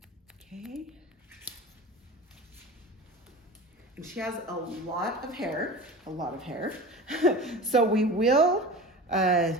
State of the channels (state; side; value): normal; both; correlation 0.33